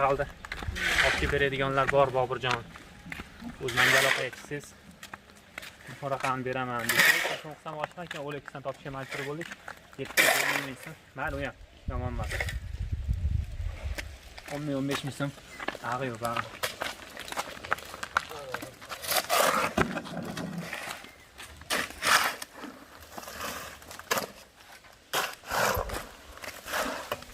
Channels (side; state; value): both; identical; correlation 1.00